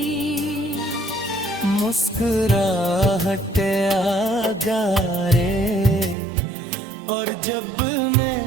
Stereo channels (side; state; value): left; drops out; at 6.2 s